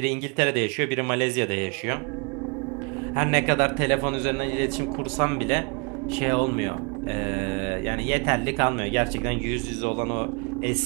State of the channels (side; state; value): left; quieter; 33.8 dB